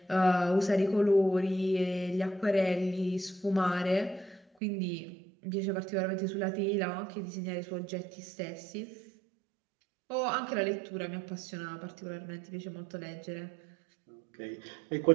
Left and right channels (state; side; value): drops out; left; at 4.4 s